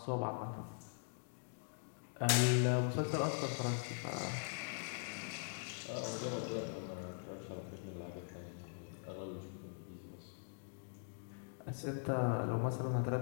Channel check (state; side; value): silent; right; digital silence